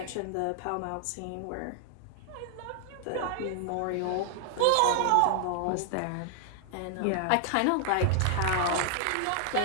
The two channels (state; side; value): different; both; correlation 0.00